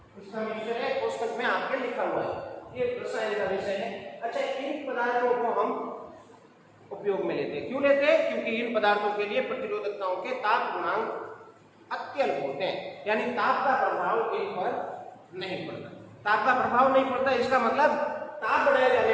इसका मिक्सचर है, कोष्ठक में आपके लिखा हुआ है। ये रसायन का विषय है। अच्छा, इन पदार्थों को हम उपयोग में लेते हैं। क्यों लेते हैं? क्योंकि इन पदार्थों के लिए प्रतिरोधकताओं के ताप गुणांक अत्यल्प होते हैं, यानी ताप का प्रभाव इन पर नहीं पड़ता। ताप का प्रभाव नहीं पड़ता, इसका मतलब ताप बढ़ाए जाने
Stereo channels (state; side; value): identical; both; correlation 1.00